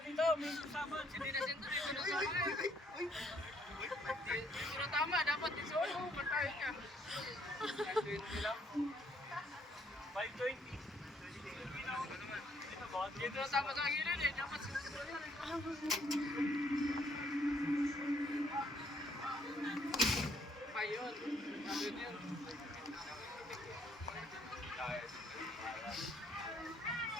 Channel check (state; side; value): normal; both; correlation 0.68